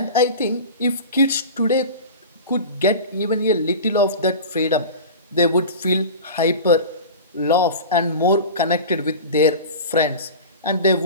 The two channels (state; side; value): inverted; both; correlation -0.32